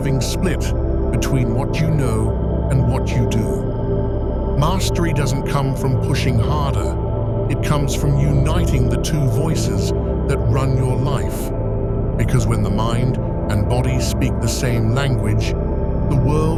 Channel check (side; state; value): both; identical; correlation 1.00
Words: split between what you know and what you do. Mastery doesn't come from pushing harder. It comes from uniting the two voices that run your life. Because when the mind and body speak the same language, the